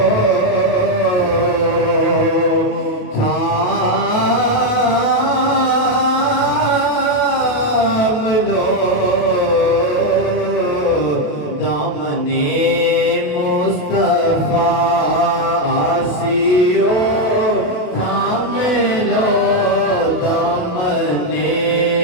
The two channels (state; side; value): late; right; 28 ms